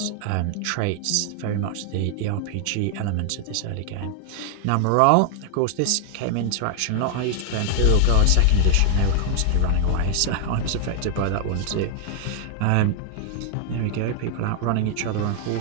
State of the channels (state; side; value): different; both; correlation 0.00